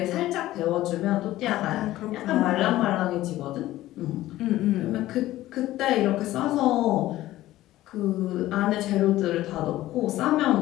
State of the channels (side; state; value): right; quieter; 15.5 dB